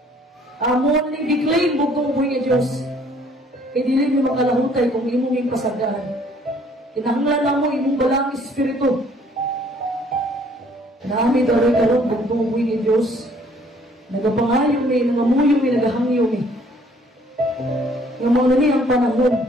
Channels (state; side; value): normal; both; correlation 0.60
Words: Amon ni declaim bugtong ubuhi nga Diyos. Kay dili mo makalahutay kung imong ipasagdaan. Kinahanglan mo imong balang espiritu. Naami daroy karon bugtong ubuhi ni Diyos. Nagapangayo ni, nangamuyo ni, nagahangyo ni. Nga mga ni ang panahon.